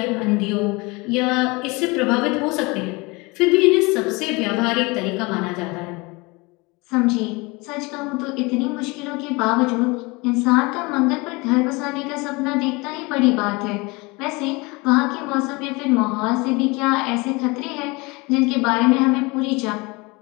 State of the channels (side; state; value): right; quieter; 25.7 dB